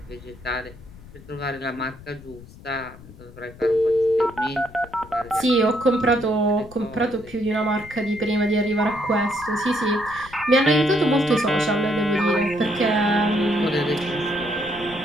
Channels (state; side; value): noise; left; rumble, 19 dB below the sound